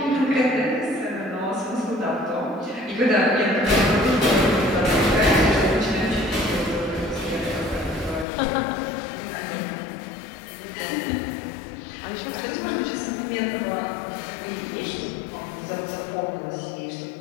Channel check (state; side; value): drops out; right; at 8.2 s